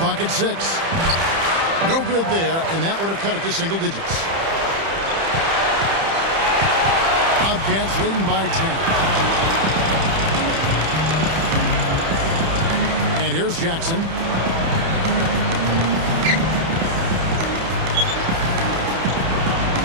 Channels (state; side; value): late; left; 30 ms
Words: at 6. No good there, and that would have cut it to single digits. Bobcats leading by 10. And here's Jackson.